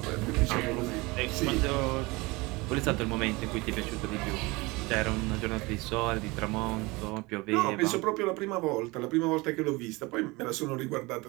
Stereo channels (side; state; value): left; quieter; 23.8 dB